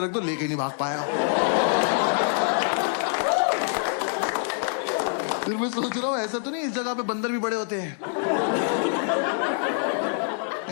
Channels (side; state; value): right; silent; 62 dB below the other